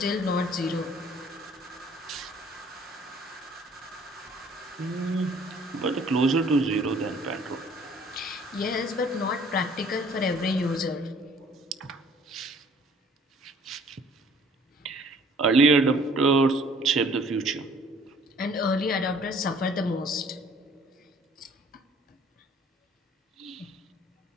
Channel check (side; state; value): both; normal; correlation 0.56